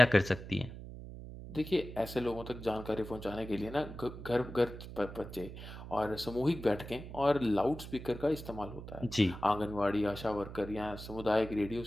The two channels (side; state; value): right; noise; hum, 11 dB below the sound